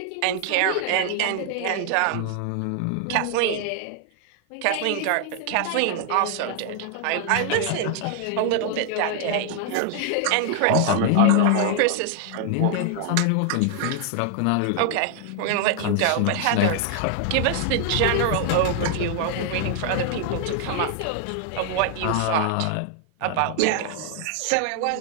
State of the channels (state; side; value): different; both; correlation 0.00